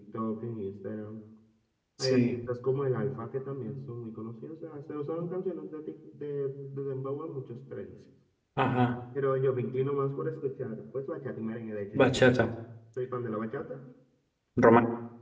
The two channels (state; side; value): identical; both; correlation 1.00